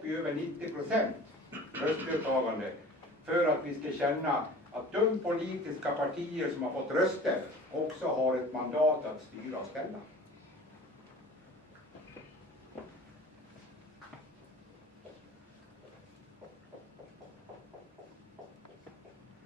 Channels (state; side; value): normal; both; correlation 0.42